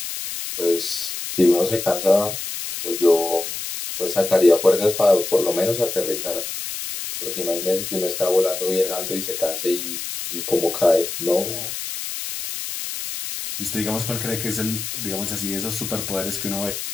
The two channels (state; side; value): noise; left; hiss, 6 dB below the sound